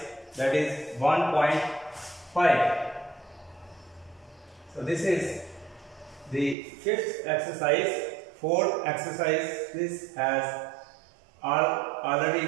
that is 1.5. So this is the fifth exercise. Fourth exercise this has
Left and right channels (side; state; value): left; drops out; at 6.6 s